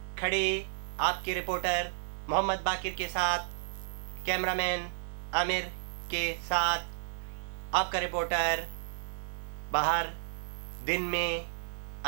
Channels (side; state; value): left; silent; digital silence